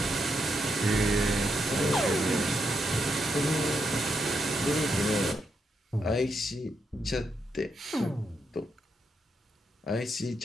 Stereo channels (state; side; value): normal; both; correlation 0.81